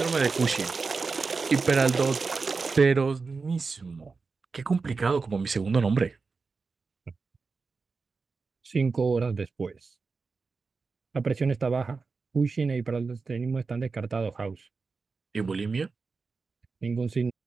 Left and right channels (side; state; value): left; quieter; 4.5 dB